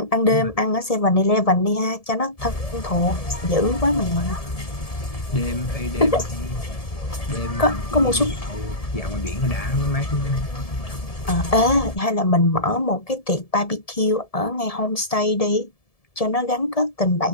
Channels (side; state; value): right; late; 1.7 ms